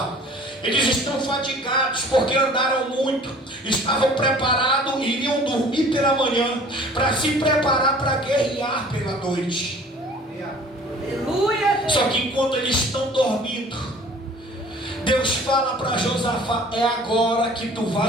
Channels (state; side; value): normal; both; correlation 0.49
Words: Eles estão fatigados porque andaram muito, estavam preparados e iriam dormir pela manhã para se preparar para guerrear pela noite. Só que enquanto eles estão dormindo, Deus fala para Josafá: é agora que tu